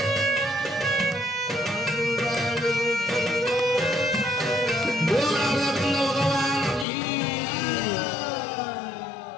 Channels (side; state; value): right; drops out; at 6.9 s